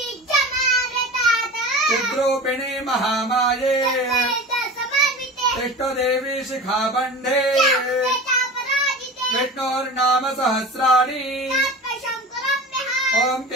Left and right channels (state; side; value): normal; both; correlation 0.33